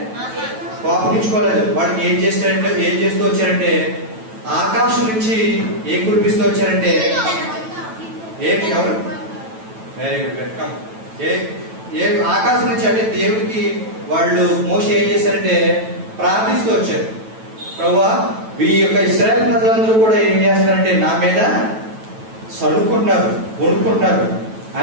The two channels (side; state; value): left; late; 9.1 ms